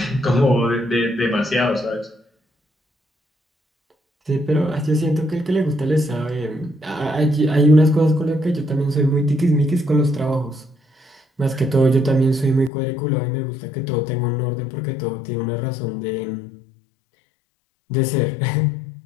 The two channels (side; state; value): right; drops out; at 12.7 s